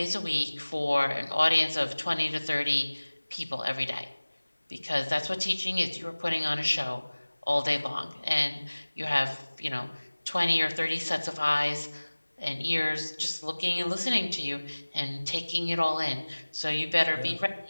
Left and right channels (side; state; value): both; inverted; correlation -1.00